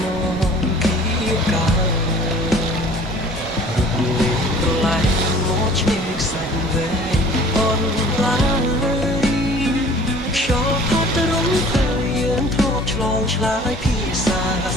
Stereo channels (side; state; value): both; normal; correlation 0.49